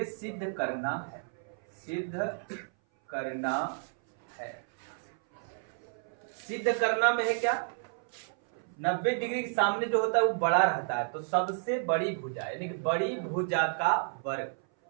सिद्ध करना है, सिद्ध करना है। सिद्ध करना में है क्या? 90 डिग्री के सामने जो होता है वो बड़ा रहता है, तो सबसे बड़ी भुजा यानी कि बड़ी भुजा का वर्ग।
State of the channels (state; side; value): silent; left; 57 dB below the other